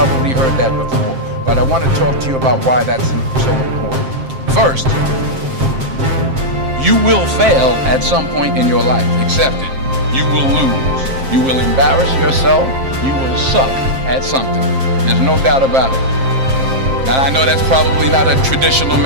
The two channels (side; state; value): left; late; 7.5 ms